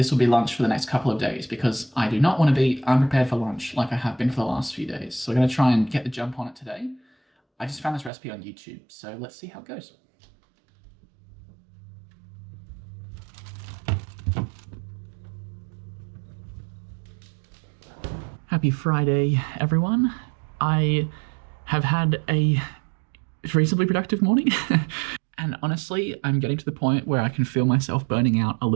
will be lunch for the next couple of days because I do not want to be unprepared for lunch like I have been for the last few days. So we're going to try and get the jump on it today. I just found this recipe on YouTube, so let's see how it goes. Happy Friday, everyone. I have had a reasonably productive morning. And honestly, I'm getting to the point where I can feel myself burning out a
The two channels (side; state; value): left; drops out; at 8.1 s